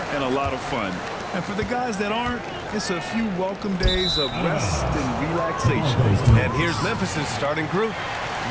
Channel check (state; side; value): identical; both; correlation 1.00